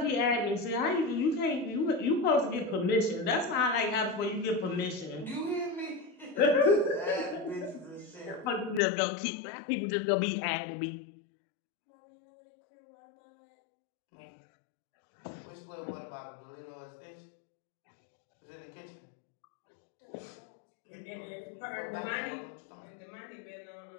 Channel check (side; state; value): right; drops out; at 8.8 s